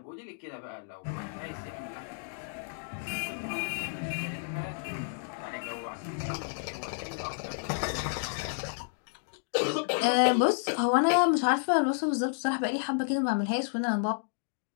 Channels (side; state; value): right; silent; digital silence